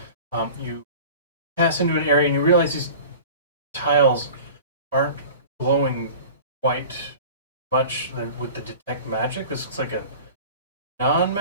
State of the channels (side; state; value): both; inverted; correlation -0.40